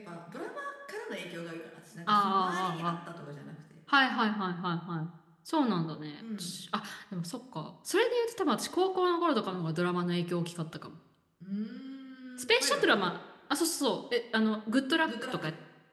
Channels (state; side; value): identical; both; correlation 1.00